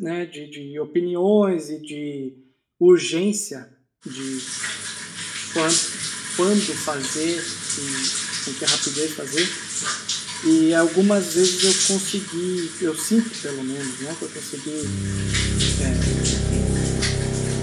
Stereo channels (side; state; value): both; identical; correlation 1.00